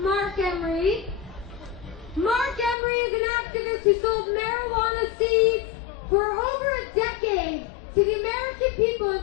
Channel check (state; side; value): drops out; right; at 2.8 s